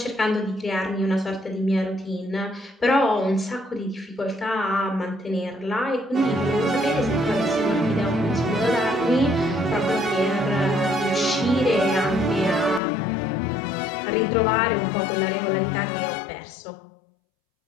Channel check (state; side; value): drops out; right; at 12.8 s